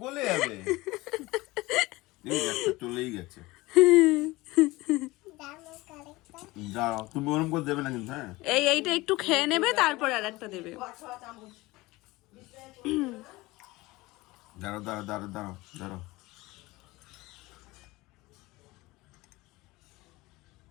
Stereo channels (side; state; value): right; quieter; 20.7 dB